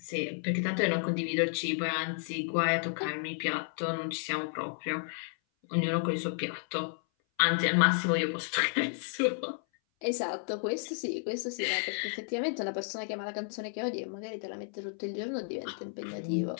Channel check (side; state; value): right; silent; 56 dB below the other